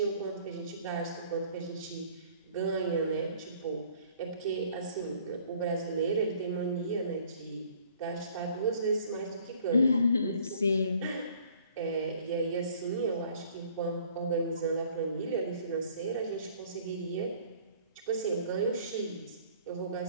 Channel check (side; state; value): both; inverted; correlation -0.56